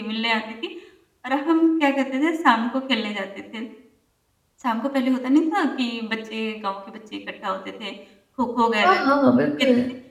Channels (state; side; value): identical; both; correlation 1.00